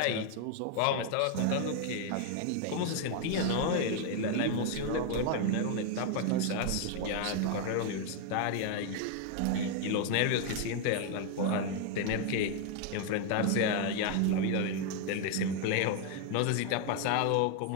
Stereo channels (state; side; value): different; both; correlation 0.00